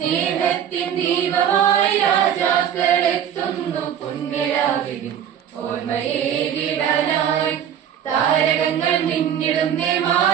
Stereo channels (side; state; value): left; quieter; 9.3 dB